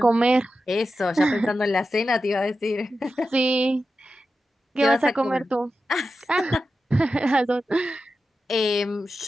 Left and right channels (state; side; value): normal; both; correlation 0.91